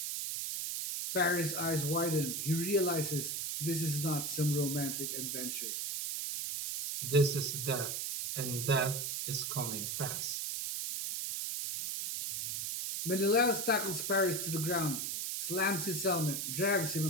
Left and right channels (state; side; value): noise; right; hiss, 2 dB below the sound